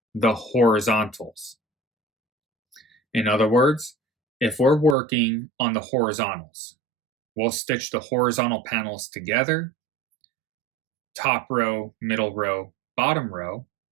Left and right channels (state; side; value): drops out; left; at 5.0 s